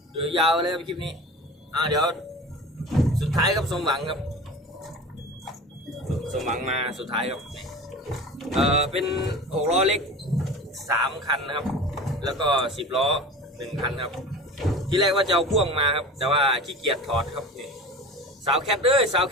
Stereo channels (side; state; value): both; normal; correlation 0.35